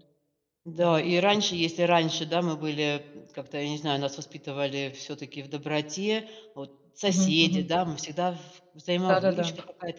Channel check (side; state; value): both; identical; correlation 1.00